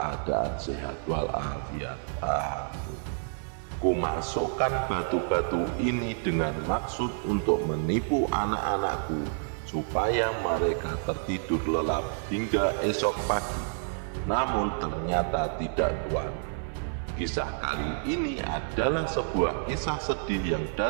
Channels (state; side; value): silent; left; 55 dB below the other